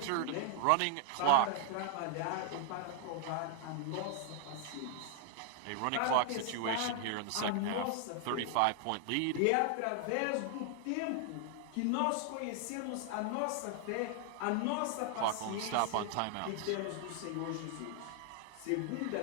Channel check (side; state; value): both; different; correlation 0.00